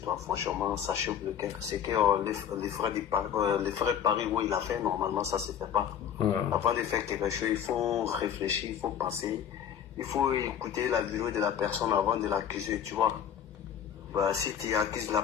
franchement, ça chauffe le cœur. C'est que les frères Paris où il a fait, normalement, ça se fait pas. Avant de faire quelque chose, il faut réfléchir, il faut penser, il faut écouter la vidéo de la personne avant de l'accuser, tu vois. Bah, si tu accuses la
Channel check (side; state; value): right; quieter; 9.0 dB